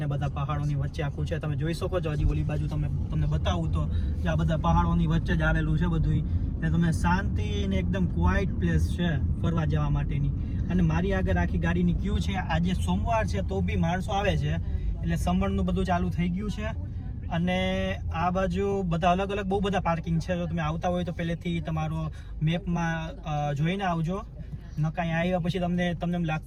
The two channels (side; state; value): both; identical; correlation 1.00